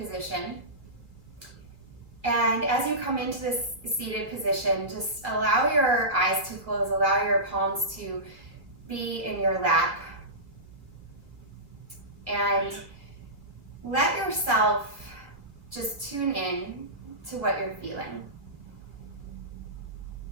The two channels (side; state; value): left; late; 2.3 ms